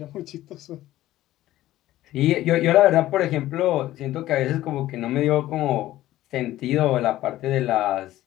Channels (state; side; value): quieter; right; 14.9 dB